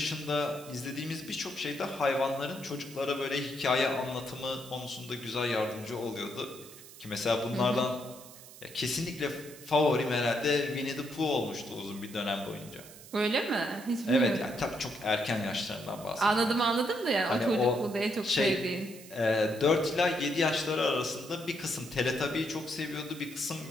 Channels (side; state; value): right; noise; hiss, 18 dB below the sound